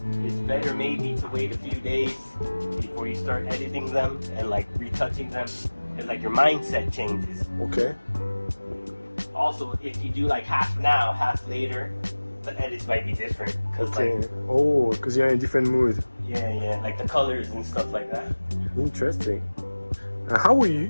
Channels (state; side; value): inverted; both; correlation -1.00